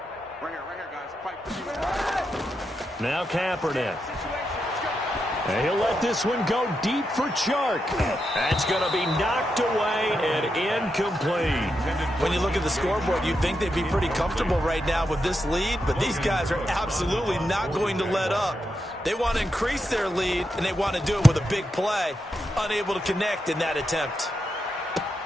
Now Kaepernick. And he'll let this one go deep for Chark. That's going to be knocked away and incomplete. When you look at the scoreboard, you'd think they'd be pretty comfortable right now with this lead, but these guys are absolutely not going to let up. They want to increase their lead, and they want to do it with a big play. Unable to connect in that attempt.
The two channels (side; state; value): both; normal; correlation 0.85